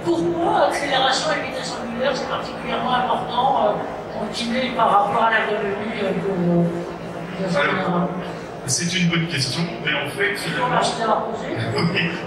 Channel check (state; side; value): identical; both; correlation 1.00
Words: pourquoi accélération et vitesse angulaire c'est particulièrement important continuer par rapport à l'ergonomie c'est une bonne question, mais en fait, finalement.